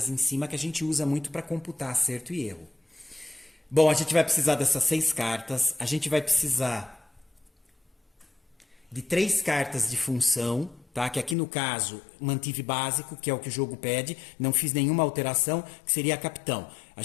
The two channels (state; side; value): drops out; right; at 11.4 s